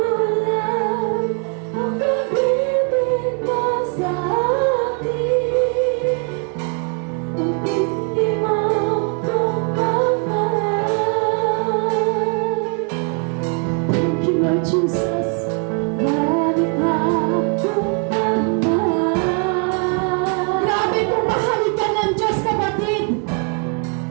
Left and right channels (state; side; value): quieter; left; 37.8 dB